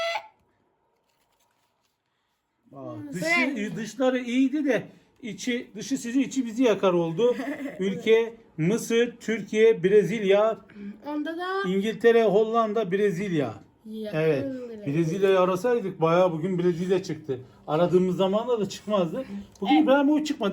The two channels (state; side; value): identical; both; correlation 1.00